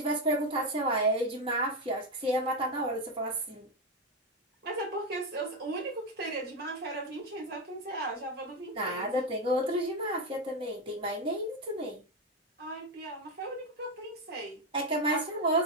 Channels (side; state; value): both; normal; correlation 0.09